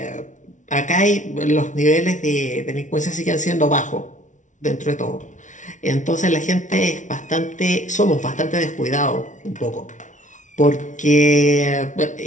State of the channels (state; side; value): late; right; 0.37 ms